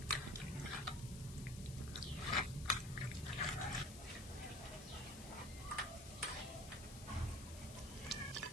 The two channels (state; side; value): noise; left; hiss, 13 dB below the sound